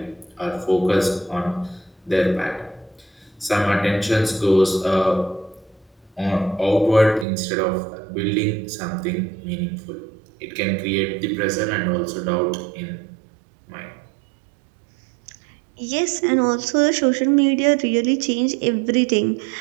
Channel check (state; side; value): drops out; left; at 7.2 s